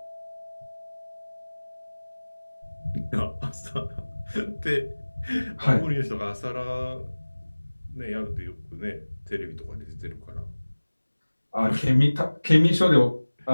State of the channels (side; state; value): both; inverted; correlation -1.00